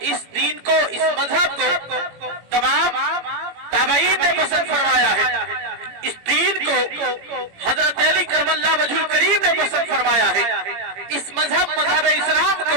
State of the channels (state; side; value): late; left; 18 ms